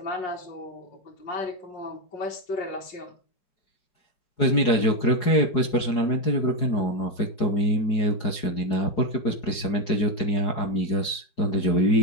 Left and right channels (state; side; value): late; right; 4.8 ms